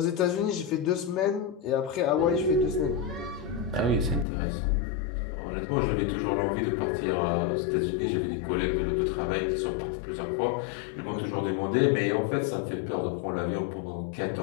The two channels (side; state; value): right; drops out; at 4.2 s